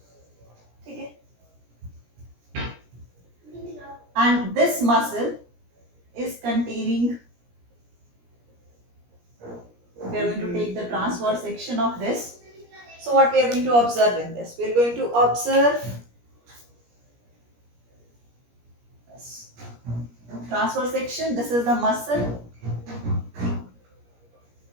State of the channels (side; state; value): left; late; 17 ms